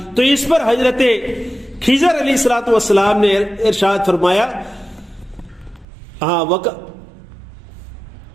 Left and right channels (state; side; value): drops out; left; at 5.9 s